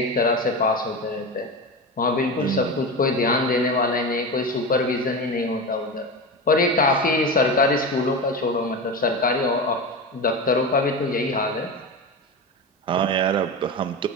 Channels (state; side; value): normal; both; correlation 0.23